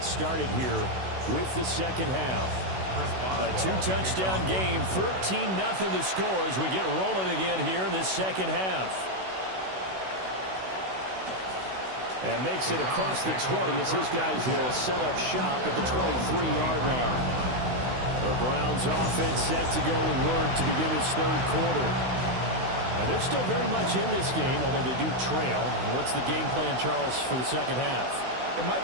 started here with the second half. A two-touchdown game, 14-0 the score as we get rolling again here in this second half. And makes it across the 20 as his guys will set up shop at the 23-yard line. The Browns offense set to go to work to begin this third quarter. And they're still very much in this game, although they do trail. What's the game plan, Charles, for the second half? It might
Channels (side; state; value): left; late; 16 ms